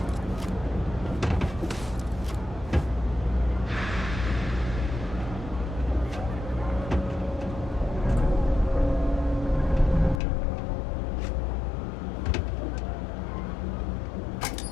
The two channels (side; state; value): right; drops out; at 10.2 s